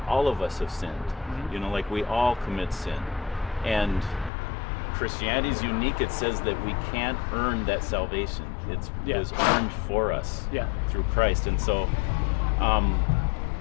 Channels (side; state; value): right; drops out; at 4.3 s